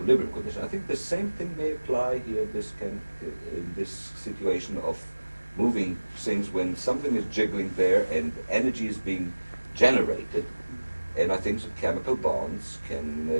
condition. I think the same thing may apply here in this situation of moving things when something is jiggling there and energy is being generated. And I think that chemical bonds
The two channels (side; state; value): both; inverted; correlation -1.00